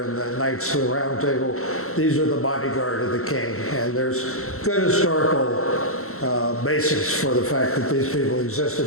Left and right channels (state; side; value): late; right; 0.63 ms